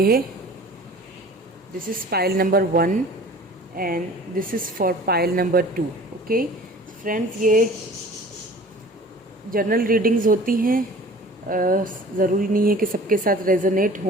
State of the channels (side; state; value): both; normal; correlation 0.45